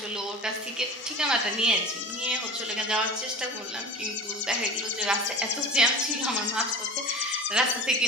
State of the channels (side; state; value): both; normal; correlation 0.35